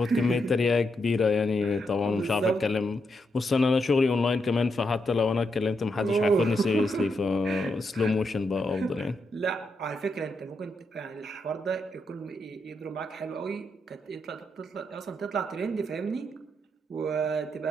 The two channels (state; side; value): normal; both; correlation 0.82